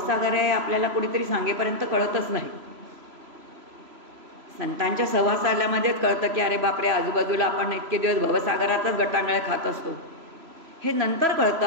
आहे आपल्याला कोणीतरी सांगेपर्यंत कळतच नाही. संतांच्या सहवासाल्यामध्येच कळतं की अरे बापरे आजूबाजूला आपण इतके दिवस भवसागरातच गटांगळ्या खात असतो, हे नंतर कळतं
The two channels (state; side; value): late; left; 3.0 ms